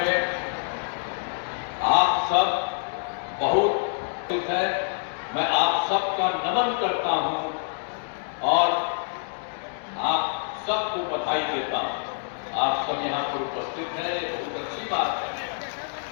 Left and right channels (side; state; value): right; silent; 61 dB below the other